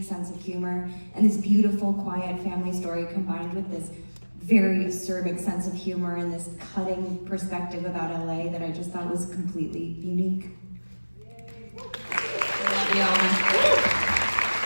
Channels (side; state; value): both; inverted; correlation -1.00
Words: sense of humor, and this beautiful, quiet family story combined with this very acerbic sense of humor and this cutting perspective about LA that I just thought was completely unique.